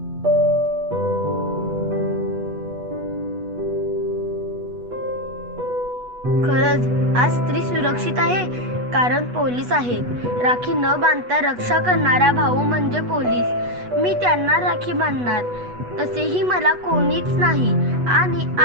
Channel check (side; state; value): left; late; 8.2 ms